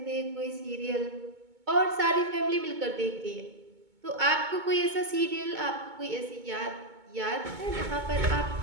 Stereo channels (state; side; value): late; left; 2.2 ms